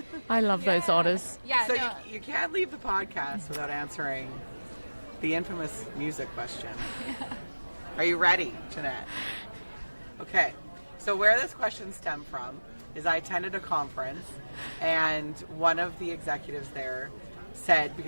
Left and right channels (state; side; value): inverted; both; correlation -1.00